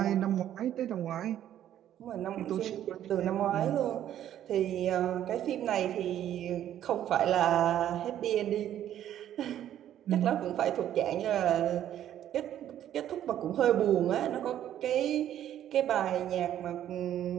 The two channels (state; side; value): quieter; left; 11.3 dB